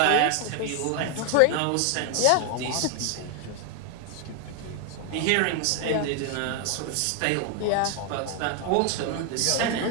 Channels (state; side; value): different; both; correlation 0.01